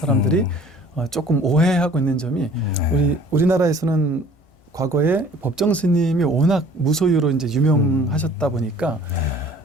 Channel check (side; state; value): right; late; 1.5 ms